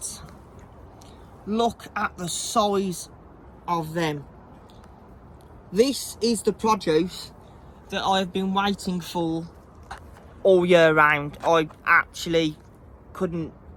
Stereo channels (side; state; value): both; identical; correlation 1.00